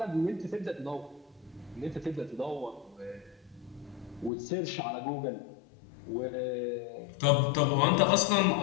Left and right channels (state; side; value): drops out; right; at 4.3 s